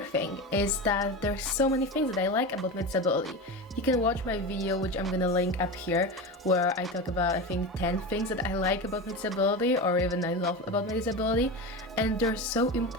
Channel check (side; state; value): both; normal; correlation 0.24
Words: thing is that there's so many things that I like about my disability. You can watch my video, which I'm gonna link up here, where I talk about, I think, 10 things that I like about my disability, or even I love about my disability, and they're so